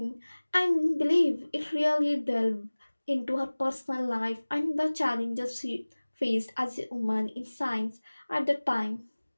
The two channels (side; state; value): both; inverted; correlation -1.00